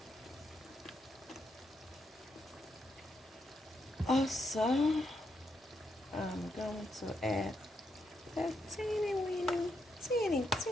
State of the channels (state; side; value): normal; both; correlation 0.80